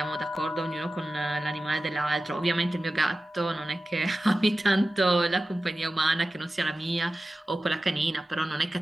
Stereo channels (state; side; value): normal; both; correlation 0.95